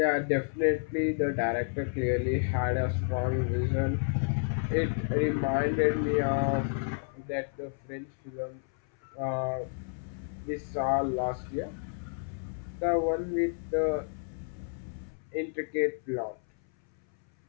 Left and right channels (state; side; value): silent; right; 57 dB below the other